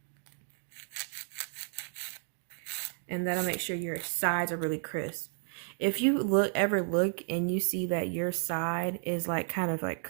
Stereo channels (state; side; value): silent; left; 56 dB below the other